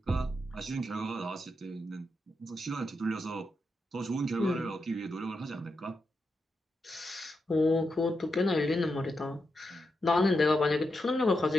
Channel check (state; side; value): normal; both; correlation 0.85